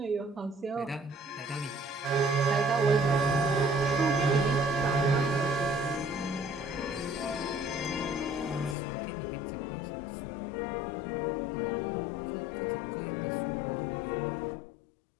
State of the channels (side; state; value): right; drops out; at 8.8 s